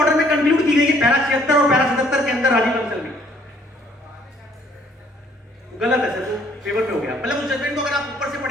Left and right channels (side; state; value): both; normal; correlation 0.62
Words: में कंक्लूड की गई है पैरा 76 और पैरा 77 के अंदर राजीव बंसल में। गलत है सर, तो फेवर में हो गया। मतलब उस जजमेंट को अगर आप ऊपर से